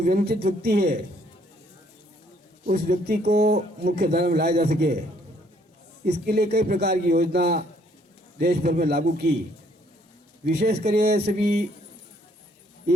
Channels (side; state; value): both; normal; correlation 0.65